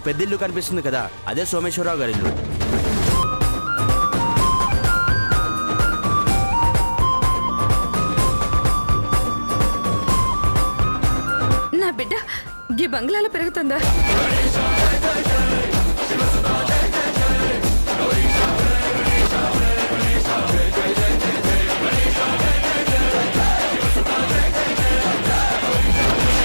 పెద్ద ఇల్లు కనిపిస్తుంది కదా, అదే సోమేశ్వరరావు గారి ఇల్లు. నా బిడ్డ ఈ బంగ్లాలో పెరుగుతుందా?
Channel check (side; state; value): both; inverted; correlation -1.00